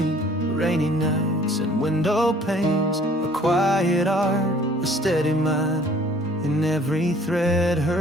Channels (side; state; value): both; normal; correlation 0.55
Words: rainy nights and window panes, a quiet art, a steady mind, in every thread